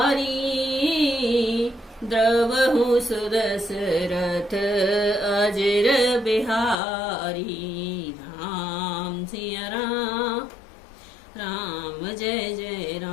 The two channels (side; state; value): right; drops out; at 6.8 s